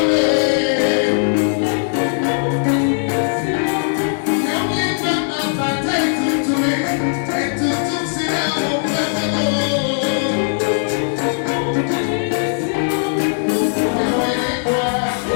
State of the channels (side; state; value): right; silent; digital silence